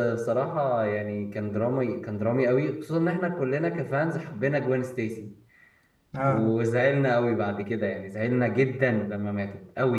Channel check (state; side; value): identical; both; correlation 1.00